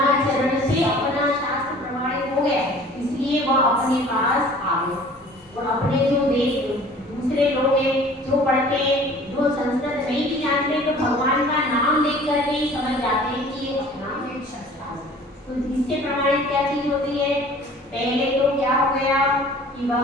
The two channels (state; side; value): normal; both; correlation 0.48